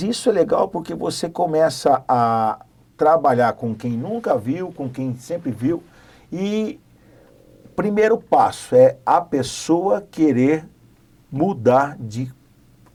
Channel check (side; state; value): both; identical; correlation 1.00